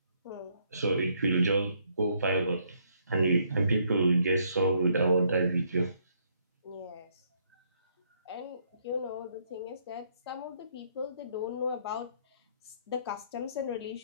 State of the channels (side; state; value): both; inverted; correlation -0.70